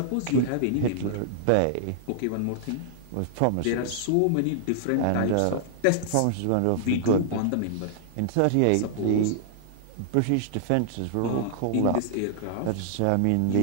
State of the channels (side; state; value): both; different; correlation -0.01